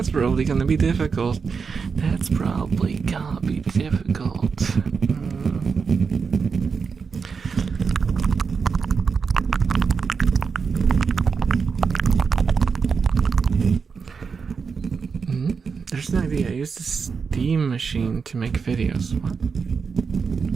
probably gonna be difficult. There's an idea. I use the Steam machine to make videos.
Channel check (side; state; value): left; quieter; 5.5 dB